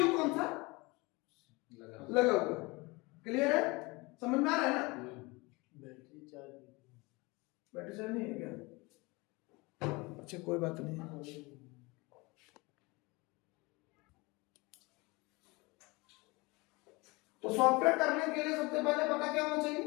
कौन सा लगा हुआ है। क्लियर है, समझ में आ रहा है ना? बैटरी चार्ज नहीं है क्या? अच्छा, कोई बात नहीं। तो सॉफ्टवेयर करने के लिए सबसे पहले पता क्या होना चाहिए,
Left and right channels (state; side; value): quieter; right; 25.0 dB